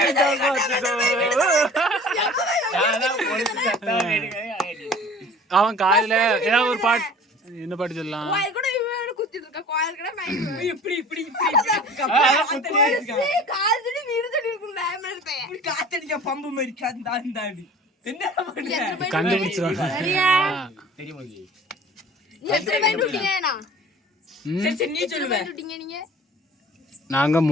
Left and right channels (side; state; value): both; normal; correlation 0.45